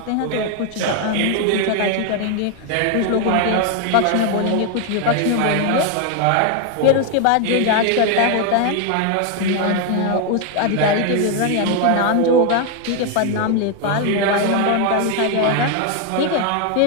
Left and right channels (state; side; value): different; both; correlation 0.01